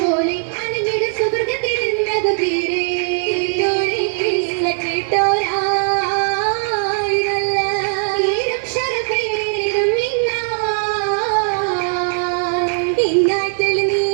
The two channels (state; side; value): silent; left; digital silence